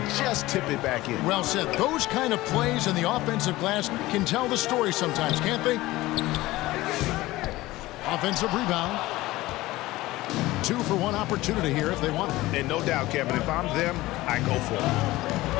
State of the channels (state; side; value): quieter; right; 18.3 dB